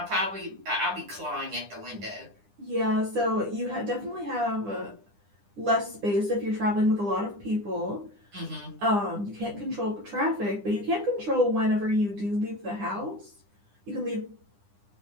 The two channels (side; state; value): left; late; 9.9 ms